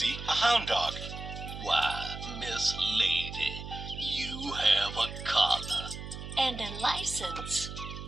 a hound dog. Why, Miss Lady, you have a collar. And a license.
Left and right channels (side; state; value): right; noise; hum, 9 dB below the sound